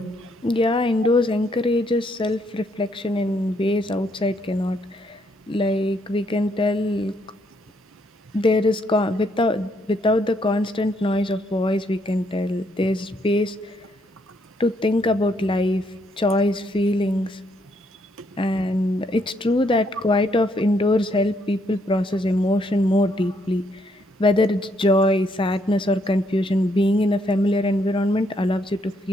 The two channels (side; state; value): both; normal; correlation 0.72